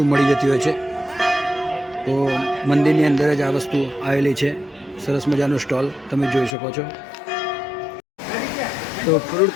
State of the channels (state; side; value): drops out; right; at 6.6 s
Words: મળી જતી હોય છે. તો મંદિરની અંદર જ આ વસ્તુ આવેલી છે. સરસ મજાનો સ્ટોલ તમે જોઈ શકો છો. તો ફ્રૂટ